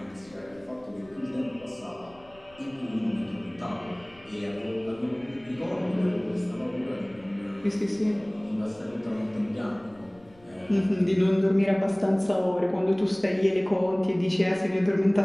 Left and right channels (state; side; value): noise; left; rumble, 27 dB below the sound